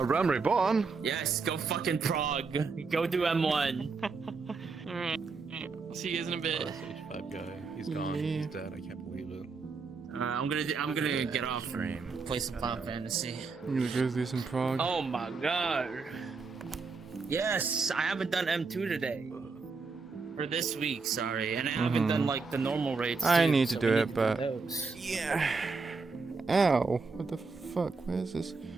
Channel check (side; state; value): left; quieter; 4.5 dB